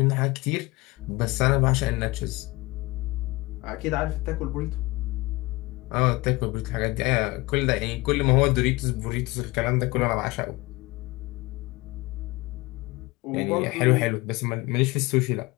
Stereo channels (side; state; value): right; quieter; 22.1 dB